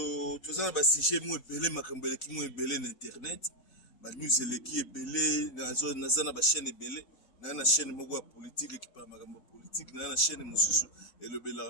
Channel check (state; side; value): late; right; 4.0 ms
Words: tozana ba sujet mo ebele makambo eleki mo ebele na internet ba news eleki ebele na zana ba chaîne ebele na chaîne moko ya politique qui parle makambo politique na chaîne mususu